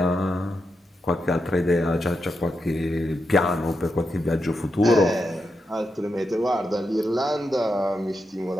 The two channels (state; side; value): normal; both; correlation 0.86